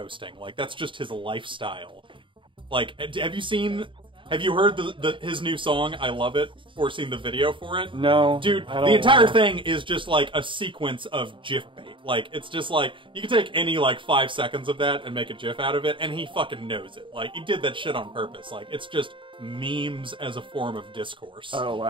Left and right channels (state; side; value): late; left; 0.24 ms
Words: Like, that's just his lifestyle. Like, have you heard his new song, I Love It, or seen the video for it? No. Dude, the entire thing is just like a sequence of GIF bait. Like, it's just like, you can take any like 5 seconds of that and make a GIF out of it, and he fucking knows it. Like, he did that shit on purpose. Like, it's just memes as a form of discourse. Oh,